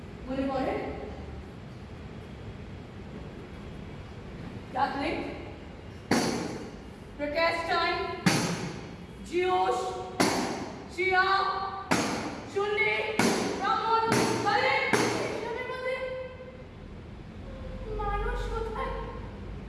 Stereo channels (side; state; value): both; identical; correlation 1.00